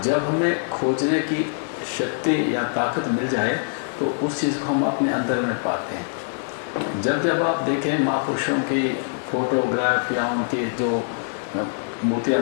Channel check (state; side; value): silent; right; 63 dB below the other